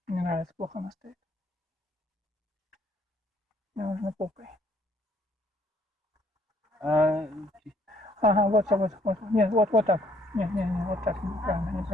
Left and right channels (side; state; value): both; normal; correlation 0.65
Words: Мне нравится, плохо она стоит. Мне нужно попой. Ага, вот. Нет, вот так. Не, вот так.